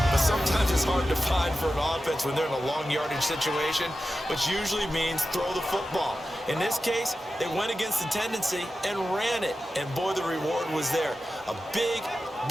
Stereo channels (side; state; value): both; normal; correlation 0.93